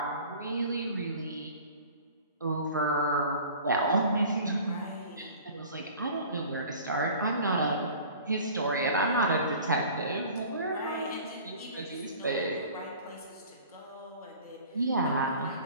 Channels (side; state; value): both; inverted; correlation -0.44